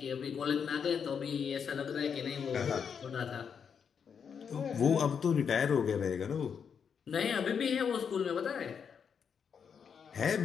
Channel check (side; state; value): right; quieter; 6.9 dB